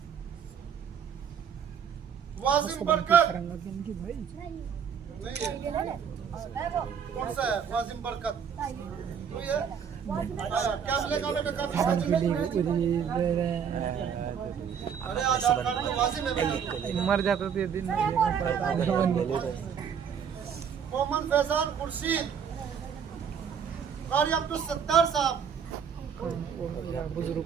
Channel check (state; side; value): quieter; left; 7.4 dB